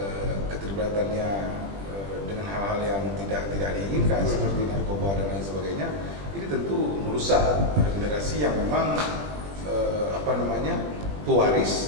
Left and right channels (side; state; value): left; late; 20 ms